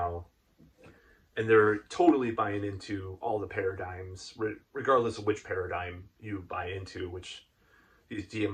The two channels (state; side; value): identical; both; correlation 1.00